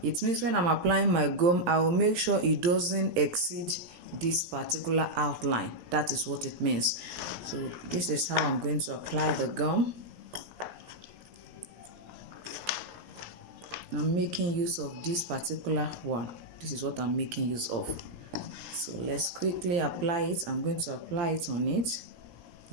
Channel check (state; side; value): late; left; 17 ms